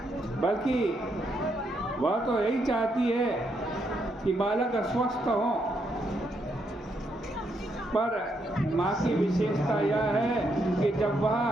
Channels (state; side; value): normal; both; correlation 0.77